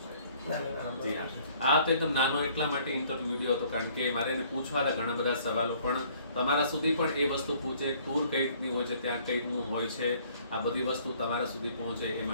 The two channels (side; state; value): both; inverted; correlation -0.59